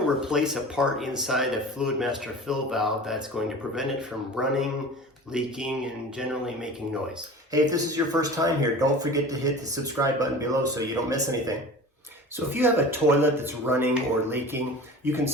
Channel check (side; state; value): both; normal; correlation 0.37